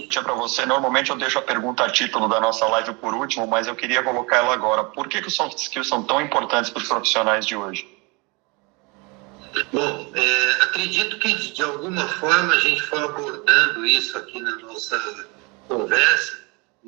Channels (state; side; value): quieter; left; 28.6 dB